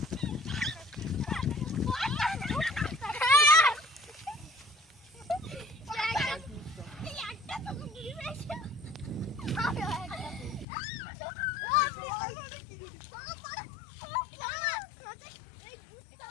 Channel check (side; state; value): right; drops out; at 10.7 s